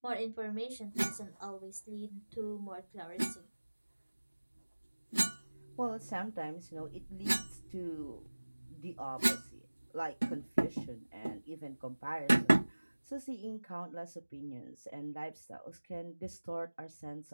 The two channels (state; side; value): inverted; both; correlation -1.00